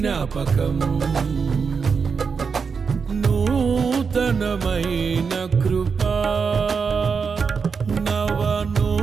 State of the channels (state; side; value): quieter; left; 5.6 dB